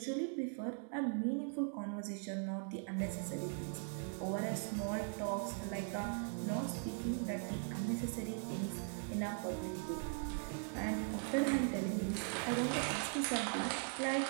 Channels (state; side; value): silent; left; 51 dB below the other